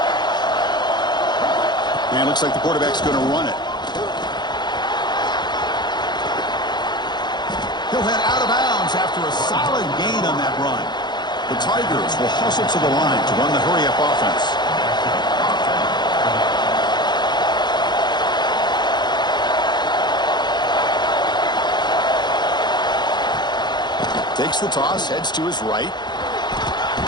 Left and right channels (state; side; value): late; right; 0.21 ms